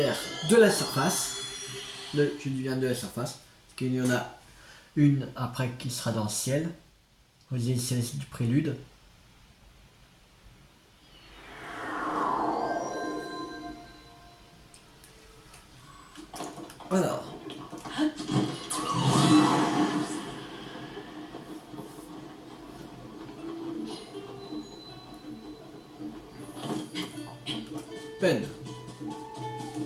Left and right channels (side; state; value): both; identical; correlation 1.00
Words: de la surface. Je dis bien de la surface. Parce qu'il y en a une après qui sera dans le ciel. Aux îles célestes du prélude. Alors. Peine.